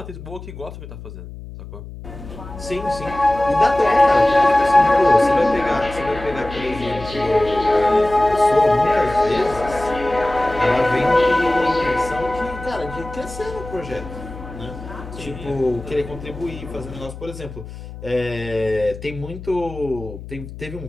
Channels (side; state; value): left; noise; hum, 13 dB below the sound